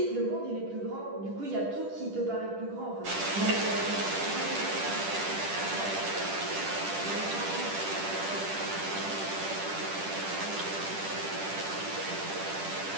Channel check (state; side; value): late; left; 10 ms